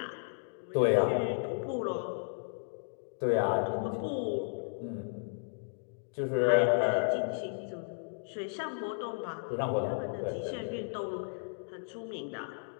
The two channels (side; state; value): right; silent; digital silence